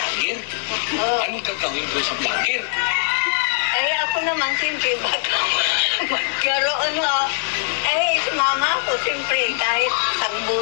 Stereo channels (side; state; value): right; silent; digital silence